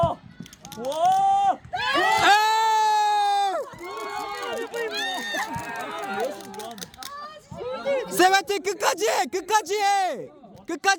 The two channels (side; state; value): both; identical; correlation 1.00